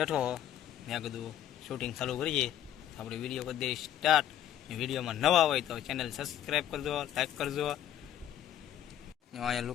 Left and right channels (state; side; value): quieter; right; 11.4 dB